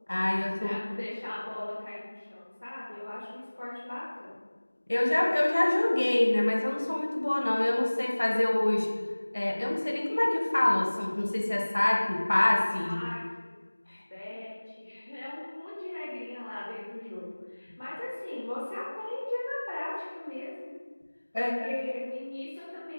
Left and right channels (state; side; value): inverted; both; correlation -1.00